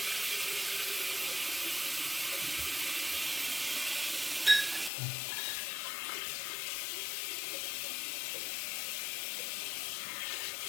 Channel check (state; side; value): drops out; right; at 4.9 s